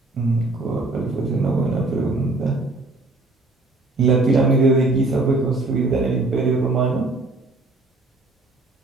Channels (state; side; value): quieter; left; 3.2 dB